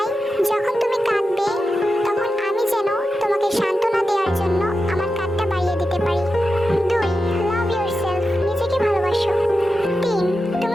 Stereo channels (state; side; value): normal; both; correlation 0.90